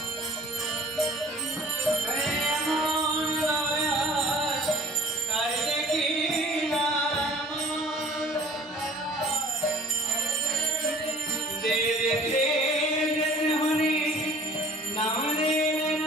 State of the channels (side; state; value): both; normal; correlation 0.49